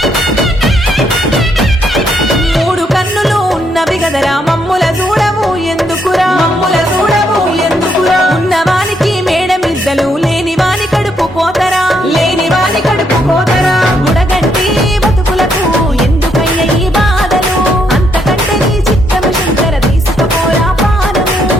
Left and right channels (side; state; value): both; normal; correlation 0.74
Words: మూడు కన్నులు ఉన్నవి గదరా మమ్ముల చూడవు ఎందుకురా ఉన్నవానికి మేడమిద్దలు లేని వాని కడుపు కోతరా గుడగంటి బతుకులకు ఎందుకయ్య ఈ బాధలు అంతకంటే నీ చిత్తము శంకర తీసుకపోరా పానము